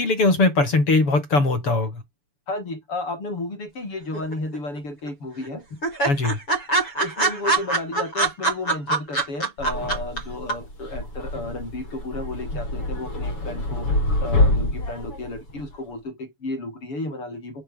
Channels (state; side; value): late; right; 7.0 ms